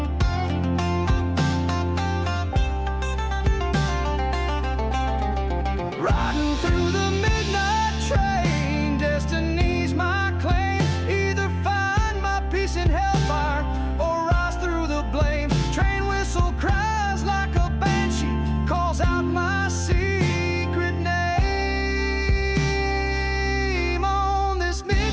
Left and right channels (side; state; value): both; identical; correlation 1.00